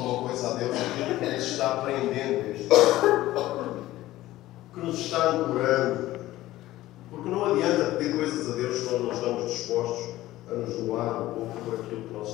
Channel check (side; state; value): right; quieter; 16.0 dB